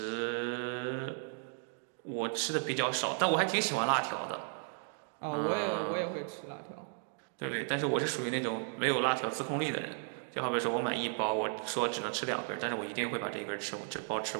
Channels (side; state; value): left; silent; 55 dB below the other